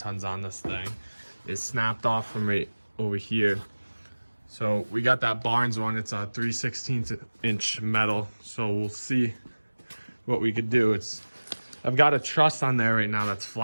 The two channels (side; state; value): both; inverted; correlation -1.00